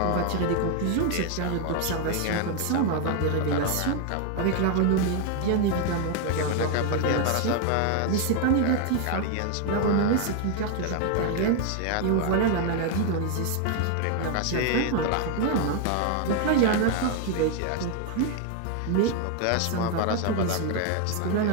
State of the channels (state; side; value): different; both; correlation 0.01